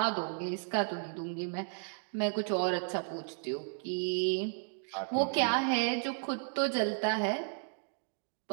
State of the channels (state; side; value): silent; left; digital silence